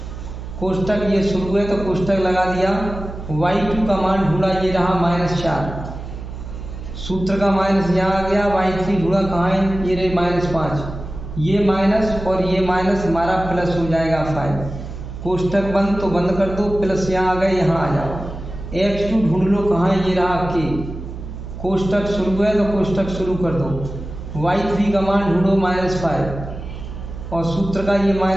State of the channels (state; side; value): noise; right; hum, 10 dB below the sound